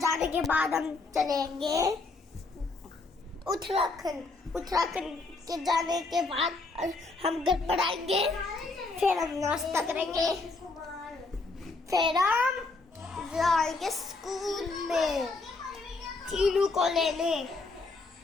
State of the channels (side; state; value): right; quieter; 3.7 dB